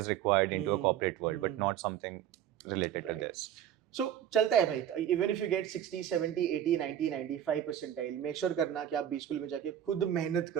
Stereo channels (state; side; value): quieter; left; 10.5 dB